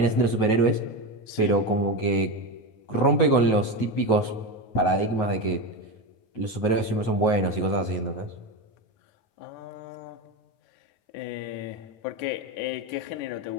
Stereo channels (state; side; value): late; right; 9.3 ms